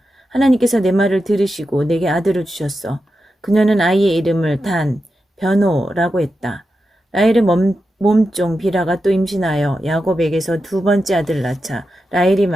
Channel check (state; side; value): normal; both; correlation 0.89